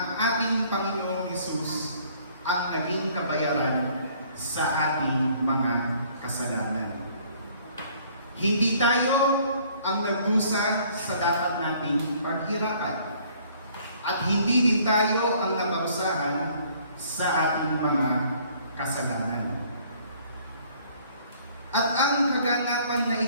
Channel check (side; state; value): both; inverted; correlation -0.59